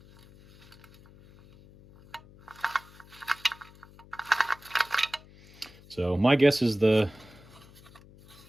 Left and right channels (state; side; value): noise; left; hum, 23 dB below the sound